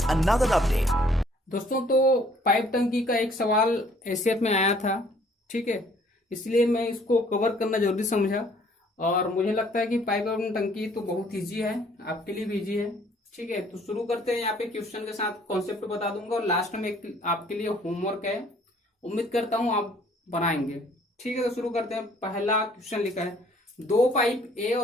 another update. दोस्तों, तो पाइप टंकी का एक सवाल एसीएफ में आया था, ठीक है। इसलिए मैं इसको कवर करना जरूरी समझा। और मुझे लगता है कि पाइप एवं टंकी तो बहुत ईजी है, आपके लिए भी ईजी है, ठीक है। तो शुरू करते हैं। यहाँ पे क्वेश्चन के साथ कॉन्सेप्ट बता दूंगा और लास्ट में एक आपके लिए होमवर्क है, उम्मीद करता हूं आप बनाएंगे, ठीक है। तो शुरू करते हैं। पहला क्वेश्चन लिखा है, दो पाइप ए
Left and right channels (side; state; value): both; normal; correlation 0.60